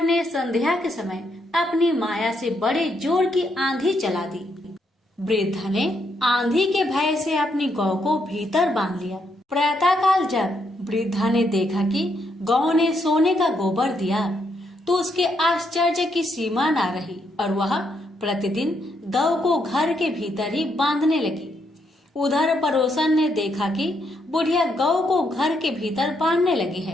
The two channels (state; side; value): normal; both; correlation 0.77